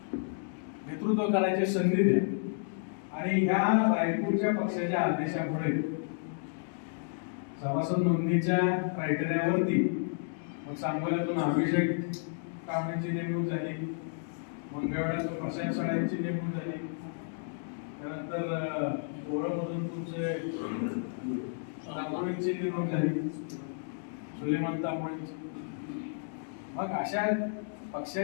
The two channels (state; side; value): silent; right; digital silence